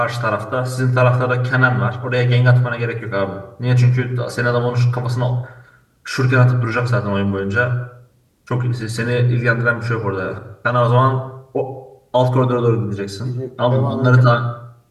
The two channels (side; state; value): both; identical; correlation 1.00